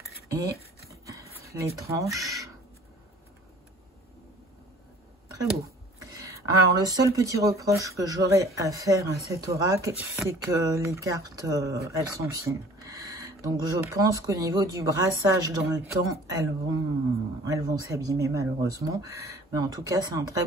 Et les tranches, très beau. Alors, le seul petit reproche que j'aurais à faire à cet oracle, c'est que les cartes, elles sont fines. Donc, je pense qu'au niveau du brassage dans le temps, elles vont s'abîmer malheureusement. Mais en tout cas, c'est un très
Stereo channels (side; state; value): both; normal; correlation 0.49